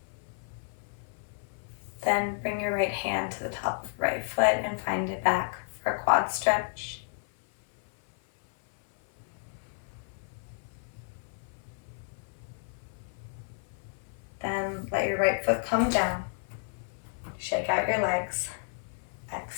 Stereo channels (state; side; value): silent; right; 57 dB below the other